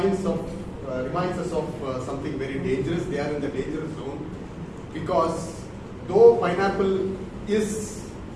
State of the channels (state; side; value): identical; both; correlation 1.00